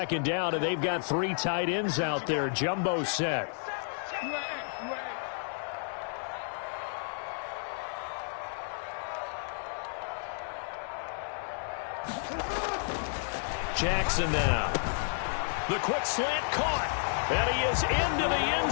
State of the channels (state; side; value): silent; right; digital silence